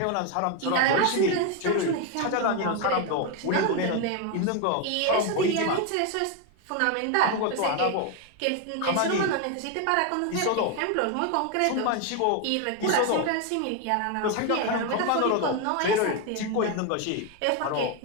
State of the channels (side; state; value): both; different; correlation 0.01